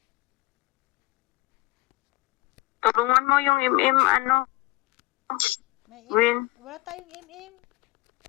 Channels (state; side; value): quieter; right; 20.1 dB